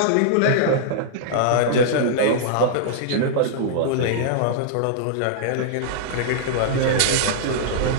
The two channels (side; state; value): both; different; correlation -0.02